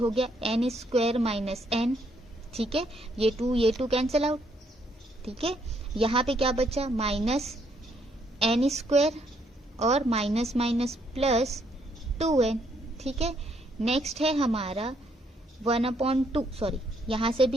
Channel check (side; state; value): both; normal; correlation 0.71